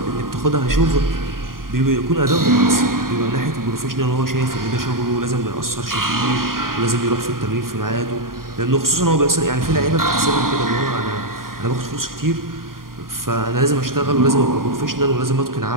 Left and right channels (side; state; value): left; late; 0.91 ms